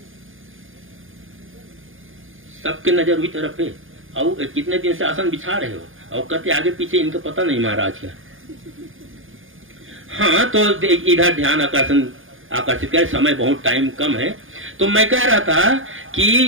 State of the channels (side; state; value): left; late; 0.58 ms